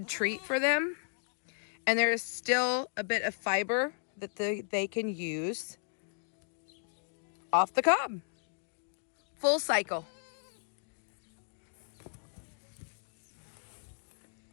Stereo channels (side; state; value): right; silent; digital silence